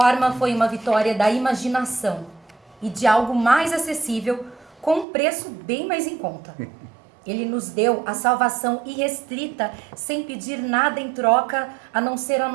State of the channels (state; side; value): drops out; left; at 5.1 s